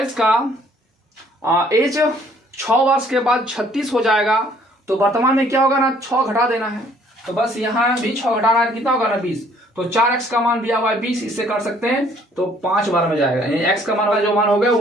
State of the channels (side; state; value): both; normal; correlation 0.61